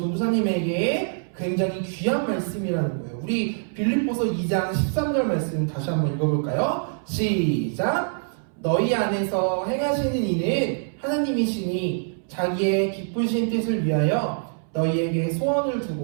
굉장히 귀한 말씀이라는 거예요. 우리 빌립보서 2장 13절 말씀 다시 한번 읽어볼까요? 시작! 너희 안에서 행하시는 이는 하나님이시니 자기의 기쁘신 뜻을 위하여 너희에게 소원을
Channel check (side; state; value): left; silent; 62 dB below the other